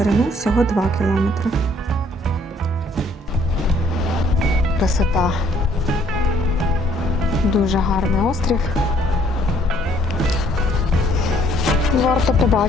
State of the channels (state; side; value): normal; both; correlation 0.63